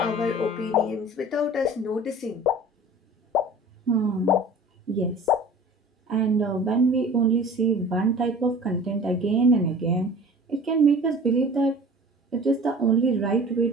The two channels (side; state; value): both; normal; correlation 0.43